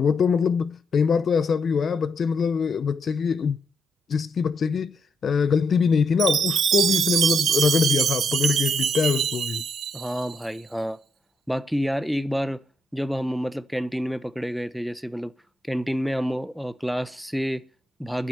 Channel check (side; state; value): both; normal; correlation 0.79